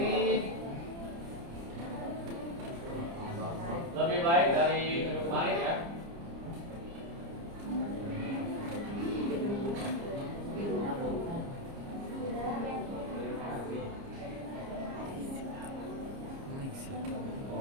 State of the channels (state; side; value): late; left; 30 ms